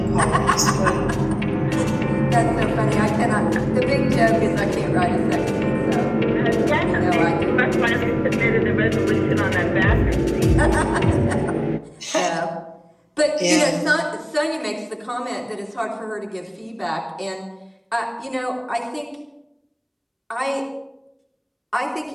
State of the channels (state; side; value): identical; both; correlation 1.00